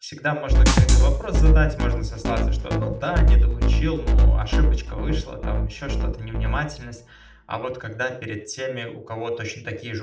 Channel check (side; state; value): both; identical; correlation 1.00